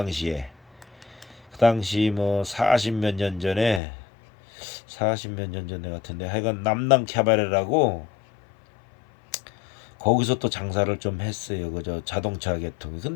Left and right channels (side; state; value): right; drops out; at 3.8 s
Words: 그 당시 뭐 40 몇 년 전에 같은데 하여간 남남 캐바레라고 거기서 또 장사를 좀 했어요. 그저 자동차 계통이.